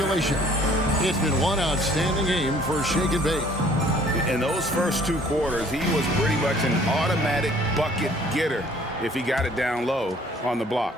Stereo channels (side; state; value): both; normal; correlation 0.56